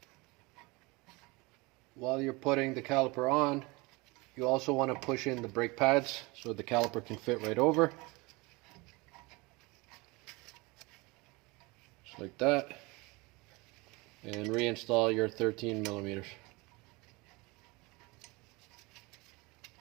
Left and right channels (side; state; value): left; quieter; 24.9 dB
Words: while you're putting the caliper on, you also want to push in the brake pads so the caliper can fit right over. Just like that. And reinstall your 13 millimeters.